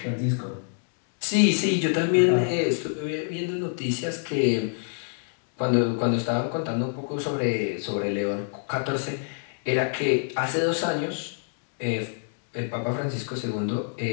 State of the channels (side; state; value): right; silent; digital silence